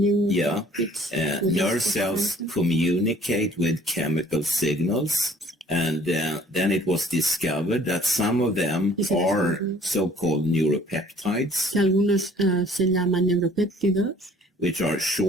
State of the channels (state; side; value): normal; both; correlation 0.55